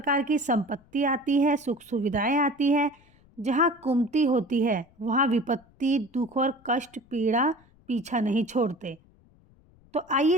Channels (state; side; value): noise; left; rumble, 30 dB below the sound